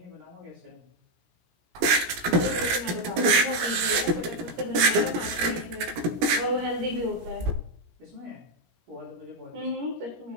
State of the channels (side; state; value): left; late; 17 ms